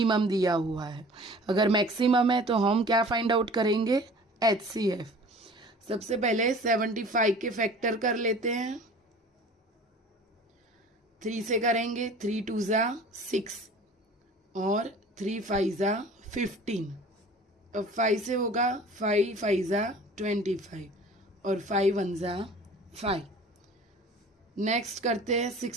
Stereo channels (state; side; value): normal; both; correlation 0.45